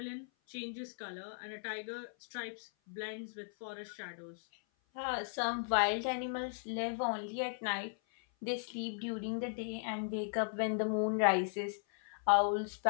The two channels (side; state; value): right; silent; 53 dB below the other